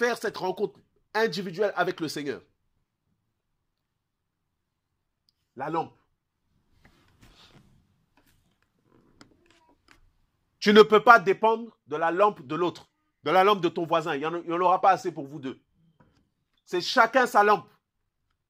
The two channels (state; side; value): identical; both; correlation 1.00